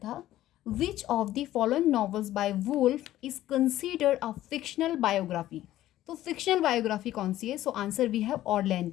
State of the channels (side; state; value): right; quieter; 14.0 dB